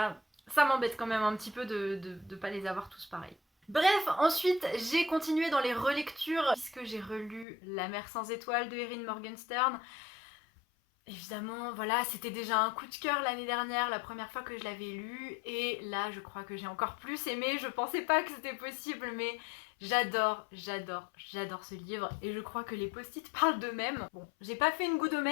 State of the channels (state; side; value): drops out; right; at 7.5 s